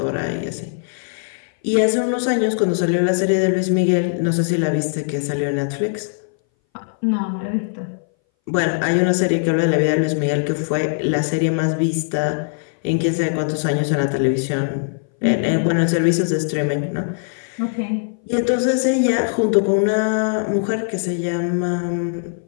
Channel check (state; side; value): silent; right; 61 dB below the other